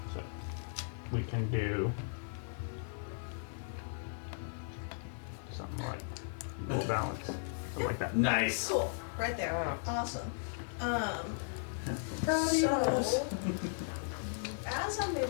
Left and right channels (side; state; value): right; silent; digital silence